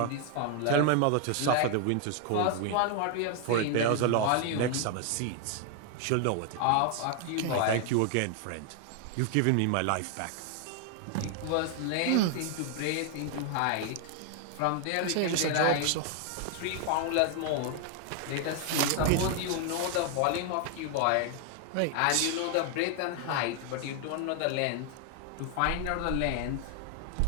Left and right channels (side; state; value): both; different; correlation 0.00